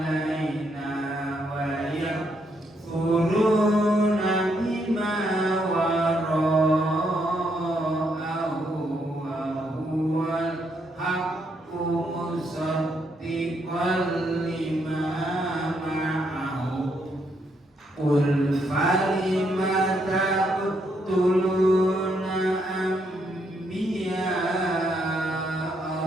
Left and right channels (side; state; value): both; normal; correlation 0.76